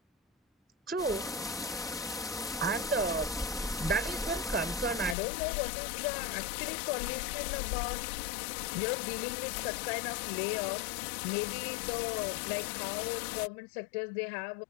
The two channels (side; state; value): right; drops out; at 5.2 s